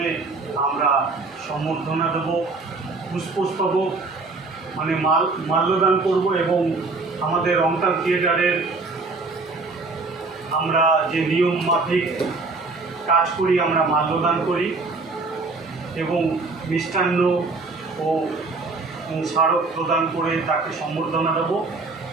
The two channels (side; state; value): left; quieter; 3.7 dB